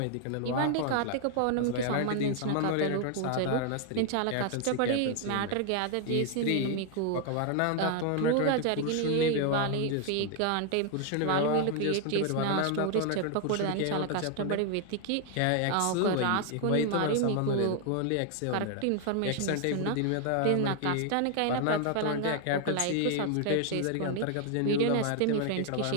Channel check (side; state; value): both; different; correlation 0.00